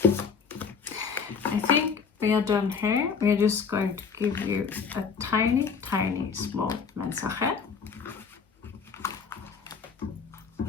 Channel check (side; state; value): right; quieter; 5.9 dB